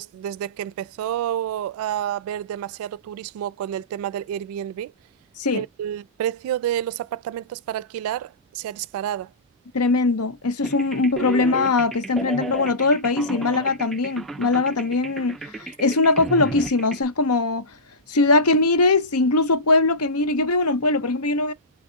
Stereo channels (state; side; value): normal; both; correlation -0.18